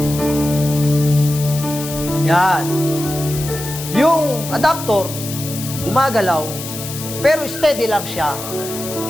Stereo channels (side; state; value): left; noise; hiss, 9 dB below the sound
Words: Yan. Yung adapter, gumagalaw, pero steady lang siya.